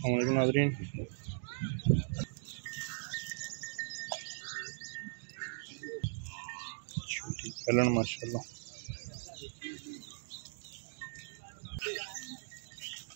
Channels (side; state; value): left; silent; digital silence